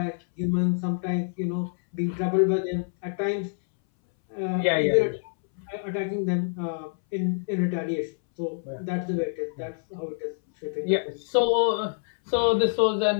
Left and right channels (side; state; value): right; silent; 61 dB below the other